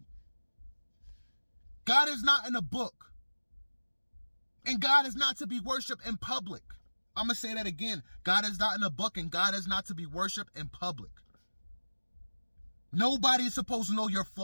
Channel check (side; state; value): both; inverted; correlation -1.00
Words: God is not in a book. And God is not to be worshipped in public. I'm going to say that again. God is not in a book, and God is not to be worshipped in public. Nobody is supposed to know your